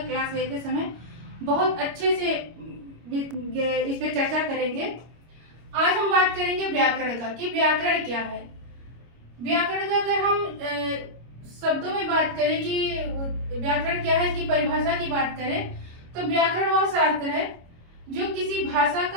क्लास लेते समय बहुत अच्छे से इस पर चर्चा करेंगे। आज हम बात करेंगे व्याकरण का कि व्याकरण क्या है। व्याकरण का अगर हम शब्दों में बात करें कि व्याकरण क्या है, इसकी परिभाषा की बात करें, तो व्याकरण वह शास्त्र है जो किसी भाषा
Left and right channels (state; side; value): late; left; 25 ms